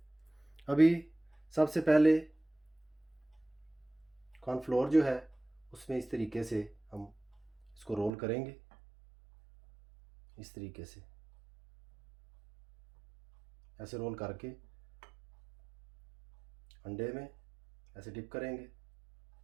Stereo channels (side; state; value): left; drops out; at 8.1 s